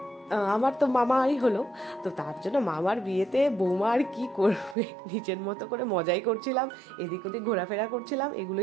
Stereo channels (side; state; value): left; drops out; at 4.8 s